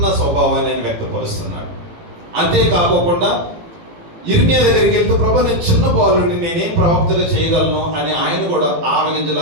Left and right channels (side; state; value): left; late; 18 ms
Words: స్వభావాన్ని ఆయన వ్యక్తపరుస్తున్నాడు. అంతేకాకుండా ఇర్మియా దగ్గరికి వెళ్తూ ప్రభా నేను చిన్న బాలుడిని, నేనేం ప్రవక్తగా చేయగలను అని ఆయన కూడా